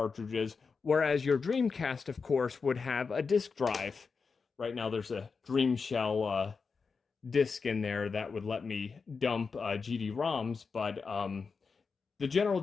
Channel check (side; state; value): right; quieter; 5.0 dB